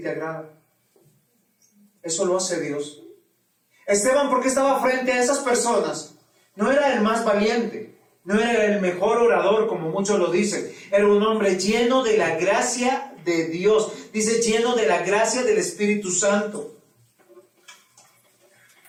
te agradan. Eso lo hace Dios. Esteban, ¿por qué estaba frente a esas personas? No era el más valiente, no era el mejor orador, como muchos lo dicen. Era un hombre lleno de la gracia de Dios. Dice, lleno de la gracia del Espíritu Santo.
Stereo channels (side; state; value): both; identical; correlation 1.00